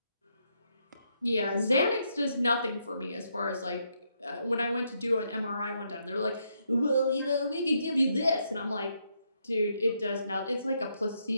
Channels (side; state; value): both; inverted; correlation -0.77